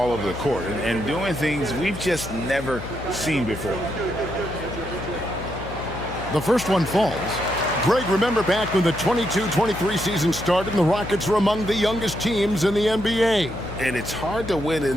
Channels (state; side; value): noise; left; hum, 10 dB below the sound